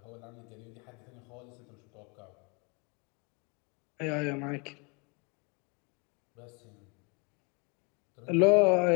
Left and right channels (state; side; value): quieter; right; 32.4 dB